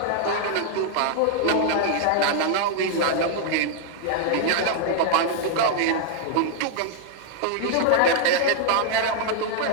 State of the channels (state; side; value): different; both; correlation 0.00